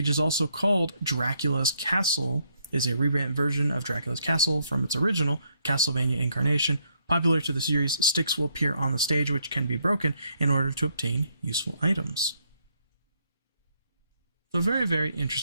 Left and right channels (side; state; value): both; inverted; correlation -0.73